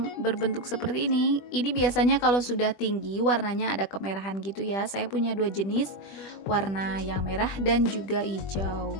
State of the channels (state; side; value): late; right; 20 ms